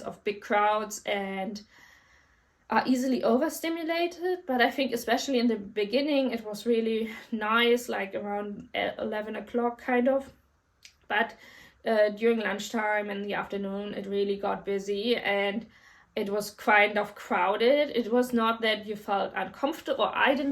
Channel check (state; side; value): identical; both; correlation 1.00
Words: of big crowds and are easily overstimulated. But I think especially in the beginning it was really nice, like around 11 o'clock kind of, but during lunchtime and the afternoon it really got busy and it was kind of crowded. It was not that you felt uncomfortable, or I